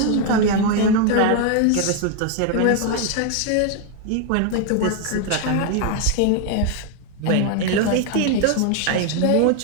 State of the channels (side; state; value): both; different; correlation 0.00